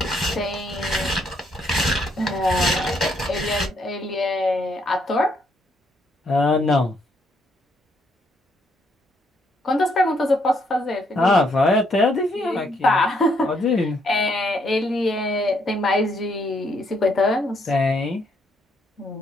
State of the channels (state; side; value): normal; both; correlation 0.72